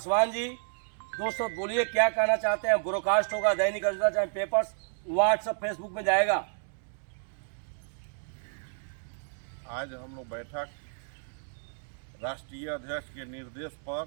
जी, दोस्तों बोलिए क्या कहना चाहते हैं। ब्रॉडकास्ट होगा दैनिक अजंता, चाहे पेपर्स, व्हाट्सएप, फेसबुक में जाएगा। आज हम लोग बैठक राष्ट्रीय अध्यक्ष के निर्देश पर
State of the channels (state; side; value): silent; left; digital silence